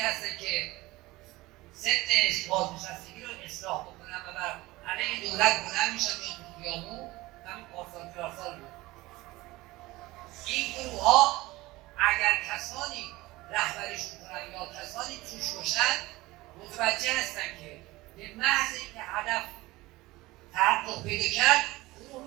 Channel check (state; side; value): quieter; left; 19.8 dB